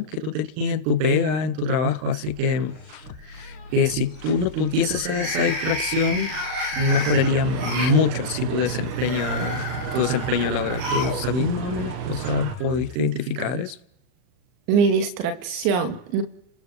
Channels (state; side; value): late; left; 39 ms